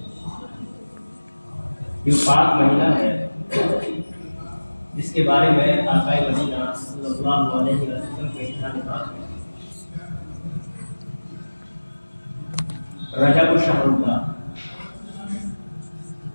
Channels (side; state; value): both; inverted; correlation -1.00